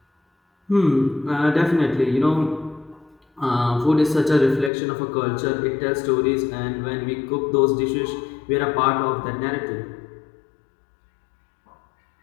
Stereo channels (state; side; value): drops out; right; at 4.7 s